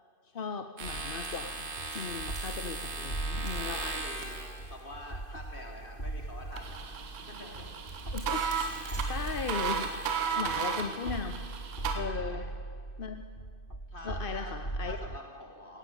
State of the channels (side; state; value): right; late; 2.5 ms